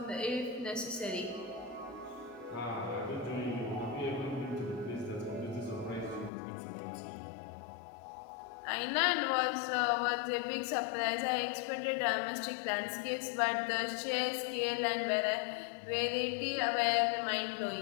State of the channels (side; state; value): right; drops out; at 6.3 s